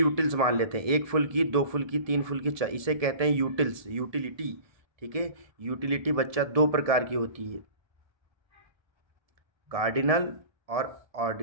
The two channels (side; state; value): left; late; 1.7 ms